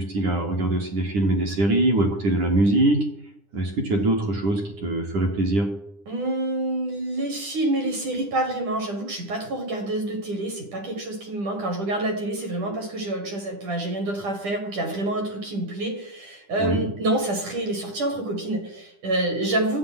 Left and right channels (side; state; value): left; late; 10 ms